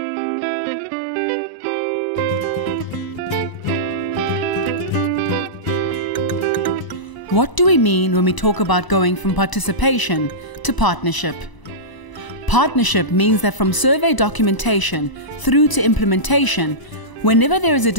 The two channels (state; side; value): late; right; 1.0 ms